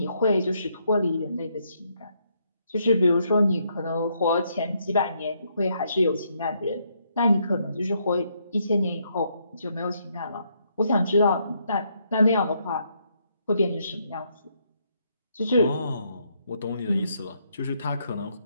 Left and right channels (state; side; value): inverted; both; correlation -0.74